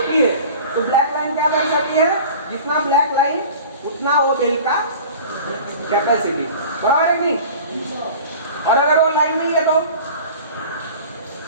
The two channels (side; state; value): both; inverted; correlation -0.40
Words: है। तो ब्लैक लाइन क्या दर्शाती है? जितना ब्लैक लाइन उतना वो बेल्ट का कैपेसिटी, बराबर है नहीं? और अगर वो लाइन नहीं है तो,